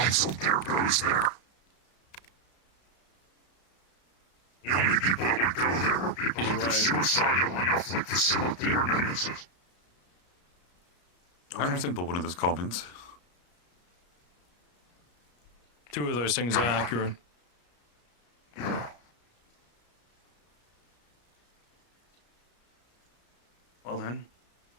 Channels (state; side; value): late; right; 33 ms